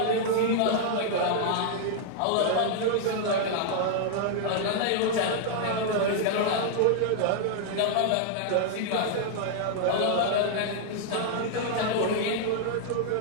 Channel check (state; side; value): different; both; correlation 0.00